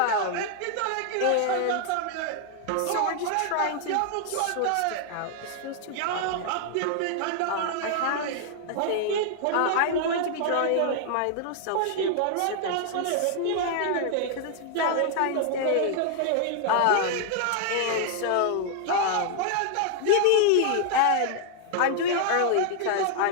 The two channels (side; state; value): both; different; correlation 0.00